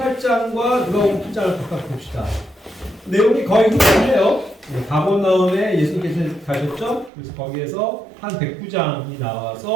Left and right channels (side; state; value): left; drops out; at 7.1 s